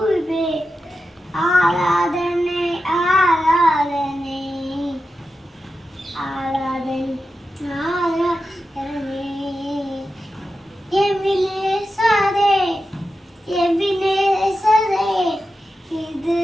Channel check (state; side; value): normal; both; correlation 0.90